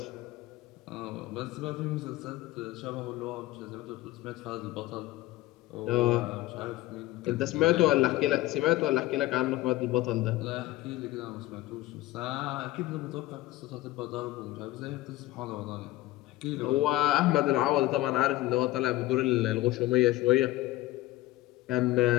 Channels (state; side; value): quieter; right; 17.1 dB